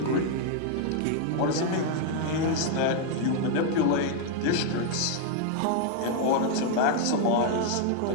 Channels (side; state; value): both; different; correlation 0.00